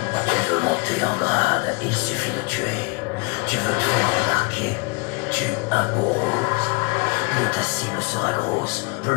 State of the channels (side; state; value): right; quieter; 30.0 dB